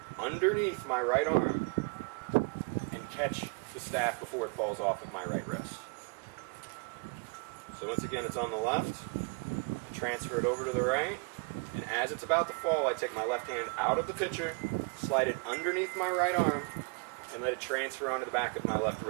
underneath my right arm and catch the staff before it falls off of my right wrist. So once again, it's on the left. I transfer it over to the right. And as it's about to fall, I take my left hand out of the picture, slide it underneath my right arm, and let it transfer onto the back of my left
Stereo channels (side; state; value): left; quieter; 34.6 dB